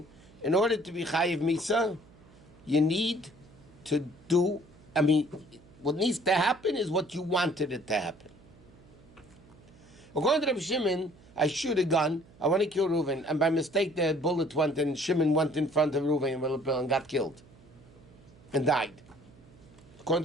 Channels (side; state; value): right; noise; hum, 25 dB below the sound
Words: in order to be Chayiv Misa, you need to do, what needs to happen is what you wanted it to happen. According to Reb Shimon, I shoot a gun, I want to kill Reuven, and by mistake the bullet went and Shimon went in front of Reuven and got killed. And died. According